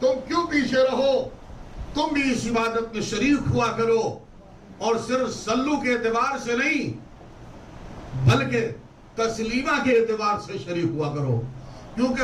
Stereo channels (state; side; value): identical; both; correlation 1.00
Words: کیوں پیچھے رہو؟ تم بھی اس عبادت میں شریک ہوا کرو، اور صرف صلو کے اعتبار سے نہیں بلکہ تسلیمہ کے اعتبار سے شریک ہوا کرو،